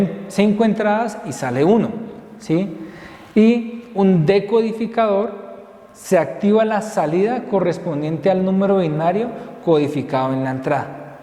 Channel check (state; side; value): identical; both; correlation 1.00